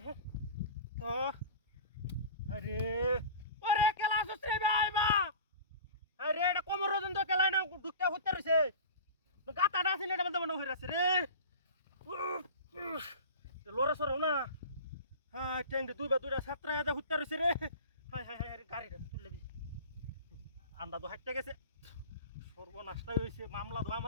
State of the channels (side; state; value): both; inverted; correlation -0.36